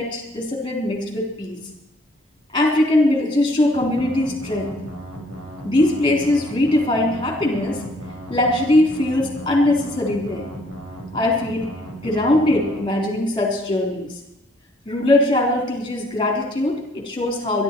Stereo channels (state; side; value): normal; both; correlation 0.63